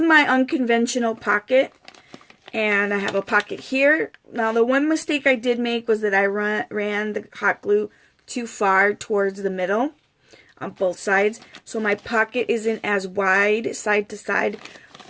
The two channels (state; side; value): identical; both; correlation 1.00